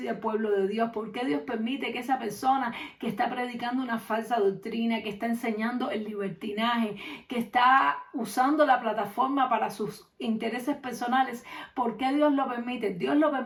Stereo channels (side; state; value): both; identical; correlation 1.00